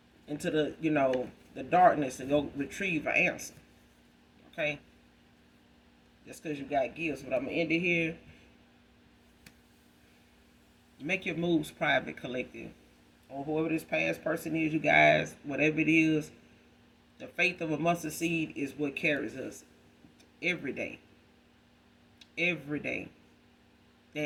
into the darkness and go retrieve an answer. Okay, just because you got gifts. But I'm gonna end it here. Make your moves private, collective, or whoever this past person is, you guys, whatever it is. The faith of a mustard seed is what carries us every day. Every day.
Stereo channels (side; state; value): both; identical; correlation 1.00